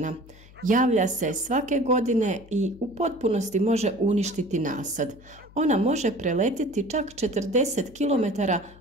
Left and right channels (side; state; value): left; noise; hum, 23 dB below the sound